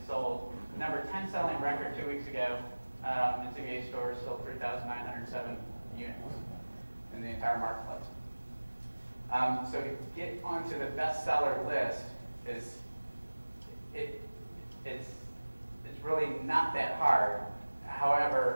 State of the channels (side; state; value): both; inverted; correlation -1.00